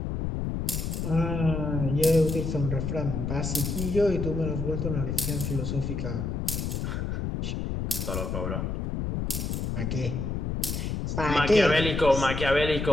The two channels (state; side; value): noise; left; rumble, 2 dB below the sound